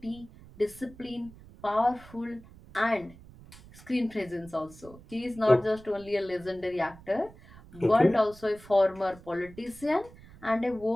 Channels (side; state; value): right; noise; rumble, 21 dB below the sound